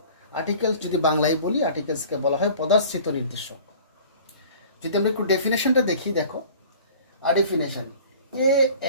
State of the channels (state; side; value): inverted; both; correlation -0.46